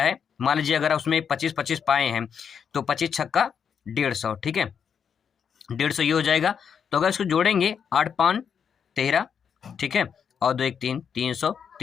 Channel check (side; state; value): right; quieter; 7.2 dB